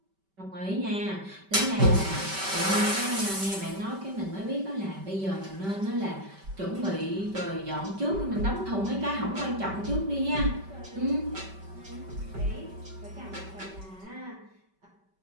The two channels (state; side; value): late; left; 5.2 ms